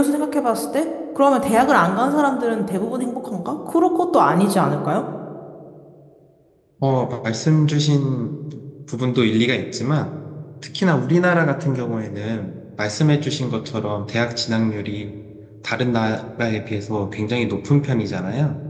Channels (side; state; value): both; identical; correlation 1.00